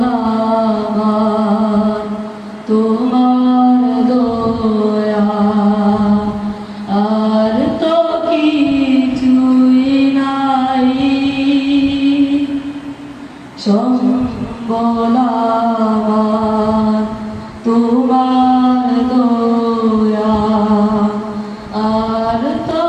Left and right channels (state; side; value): identical; both; correlation 1.00